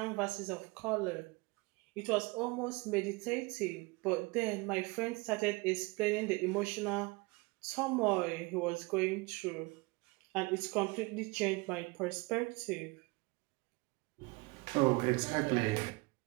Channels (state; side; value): quieter; left; 25.9 dB